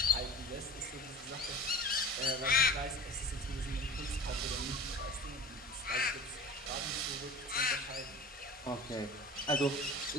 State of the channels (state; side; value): normal; both; correlation 0.37